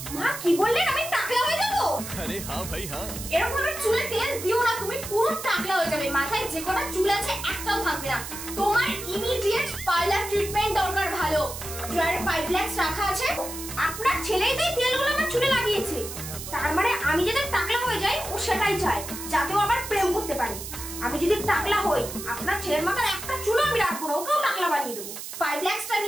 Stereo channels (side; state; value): right; noise; hiss, 9 dB below the sound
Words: মা কি বললেন আমি টাকলা হয়ে যাব? আরে হ্যাঁ ভাই হ্যাঁ। এরকম ভাবে চুলে তেল দিও না, তুমি পুরো টাকলা হয়ে যাবে। মাথায় যে কটা চুল আছে একটাও থাকবে না। তোমার ইমিডিয়েট পার্লার ট্রিটমেন্ট দরকার। ভালো ড্রায়ারে 5 লাখ রাখা আছে। আপনার ছেলেই তো এই তেলগুলো আমার চুলে লাগিয়েছে, তার মানে আমি যদি টাকলা হয়ে যাই ও সেটাই চায়, যাতে ও আবার প্রেম করতে পারে। আমি যদি টাকলা হই আপনার ছেলের মাথার একটা চুলও আমি রাখবো না, ওকেও টাকলা বানিয়ে দেবো। 5 লাখটা